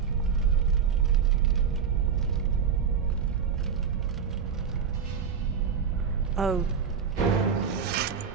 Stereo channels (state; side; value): quieter; left; 6.8 dB